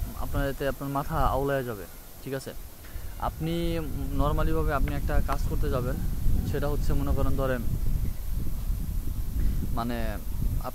এতে আপনার মাথা আউলায় যাবে। ঠিক আছে, আপনি নর্মালিভাবে আপনি একটা কাজ করতে যাবেন, সেটা হচ্ছে মনে করেন ধরেন মানে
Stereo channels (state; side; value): identical; both; correlation 1.00